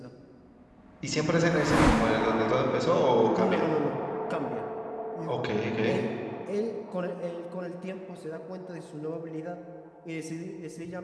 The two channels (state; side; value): identical; both; correlation 1.00